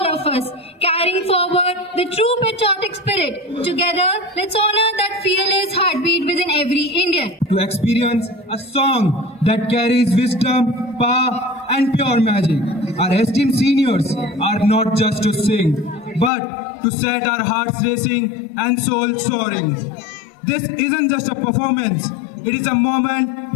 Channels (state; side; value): drops out; right; at 16.3 s